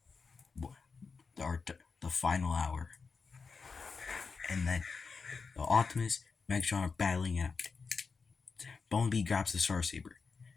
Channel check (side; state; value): right; quieter; 4.9 dB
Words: the final hour, and then the Optimus and Megatron are battling it out. Bumblebee grabs the Star Saber